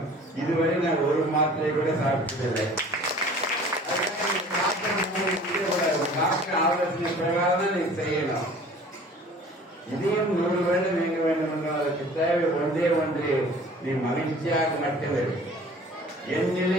இதுவரை நான் ஒரு மாத்திரை கூட சாப்பிட்டதில்லை. டாக்டர் ஆலோசனை பிரகாரம் நீ செய்யணும். இதையும் 100 வருடம் இயங்க வேண்டும் என்றால் அதற்கு தேவை ஒன்றே ஒன்று, நீ மகிழ்ச்சியாக மட்டுமே. என்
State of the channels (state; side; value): normal; both; correlation 0.47